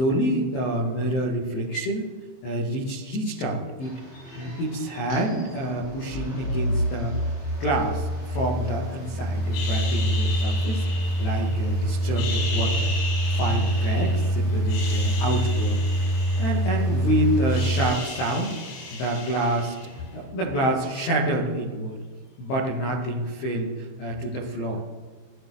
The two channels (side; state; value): right; late; 23 ms